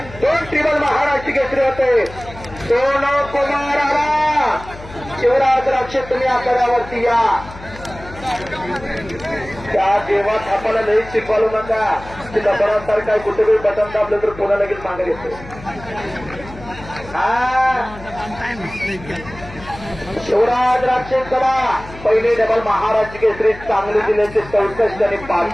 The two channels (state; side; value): noise; left; hum, 16 dB below the sound